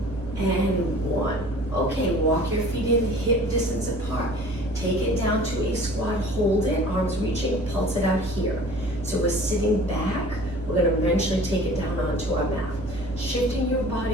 and 1. Okay, walk your feet in hip distance apart. Take it down to a squat, hold it, arms reaching, pulse it out here. So we're sitting back, we're gonna eventually take it down onto our mat. Shifting your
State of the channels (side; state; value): right; noise; hum, 12 dB below the sound